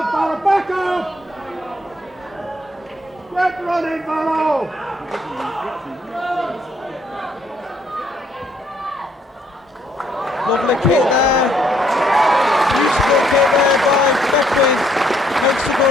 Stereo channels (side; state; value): both; normal; correlation 0.68